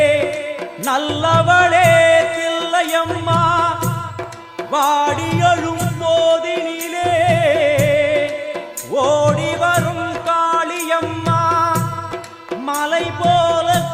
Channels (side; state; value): both; identical; correlation 1.00